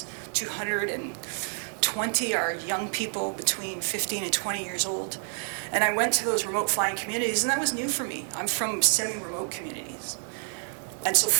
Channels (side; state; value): left; silent; 59 dB below the other